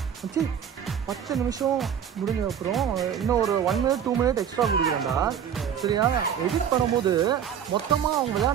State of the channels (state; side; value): quieter; left; 8.6 dB